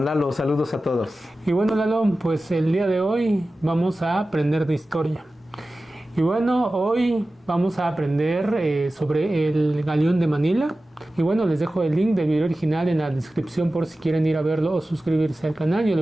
Lalo, saludos a todos. Y bueno, Lalo, pues el día de hoy vamos a aprender de historia. Y bueno, hoy vamos a aprender sobre el Galeón de Manila. Y bueno, les dejo el link del video original en la descripción por si quieren ir a verlo o suscribirse al canal. Yo le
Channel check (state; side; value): normal; both; correlation 0.95